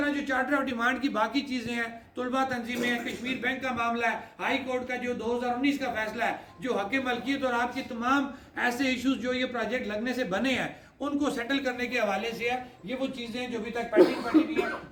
जो चार्टर ऑफ डिमांड की बाकी चीज़ें हैं, तुलबा तंजीमें हैं, कश्मीर बैंक का मामला है, हाई कोर्ट का जो 2019 का फैसला है, जो हक मलकियत और आपके तमाम ऐसे इश्यूज जो ये प्रोजेक्ट लगने से बने हैं उनको सेटल करने के हवाले से है। ये वो चीज़ें जो अभी तक पेंडिंग पड़ी हुई हैं,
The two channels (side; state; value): both; identical; correlation 1.00